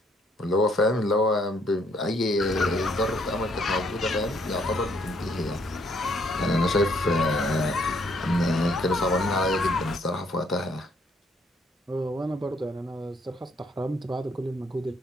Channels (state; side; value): normal; both; correlation 0.68